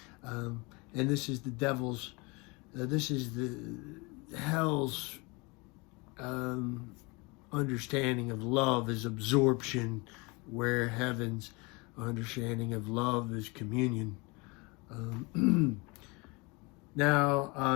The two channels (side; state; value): right; quieter; 27.4 dB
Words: and this is the devil's, this is the hell's understanding of love is absorption, where heaven's understanding of love is communion.